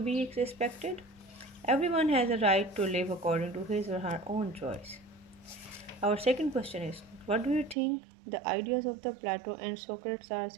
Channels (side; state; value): left; drops out; at 7.8 s